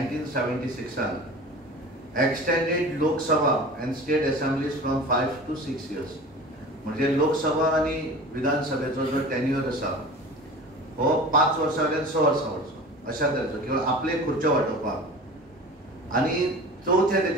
extended Lok Sabha and state assemblies from 5 to 6 years. म्हणजे लोकसभा आणि विधानसभेचो जो टेन्युअर आसा हो 5 वर्सां वयल्यान 6 वर्सां वरचो अशा तरेचो किंवा आपले खुर्च्यो वाटोवपाक. आणि चौथे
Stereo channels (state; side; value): normal; both; correlation 0.37